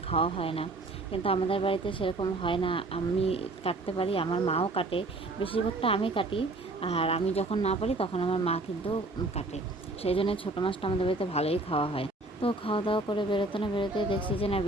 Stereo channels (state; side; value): quieter; left; 3.0 dB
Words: খাওয়া হয় না। কিন্তু আমাদের বাড়িতে সেরকম হয় না, আমি কাটতে পারি, আমার মাও কাটে। বেশিরভাগটা আমি কাটি। আর আমি যখন না পারি তখন আমার মা কিন্তু কাটে। সেই জন্য ছোটো মাছটা আমাদের বাড়িতে ভালোই খাওয়া হয়। তো খাওয়া দাওয়া করে বেরোতে না বেরোতে দেখছি যে না,